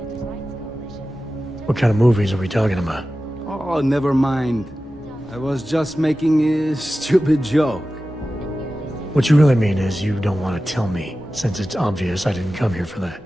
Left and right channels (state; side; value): normal; both; correlation 0.94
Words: What kind of movies are we talking about? Oh, never mind. I was just making a stupid joke. What you really mean is you don't want to tell me, since it's obvious I didn't come here for that.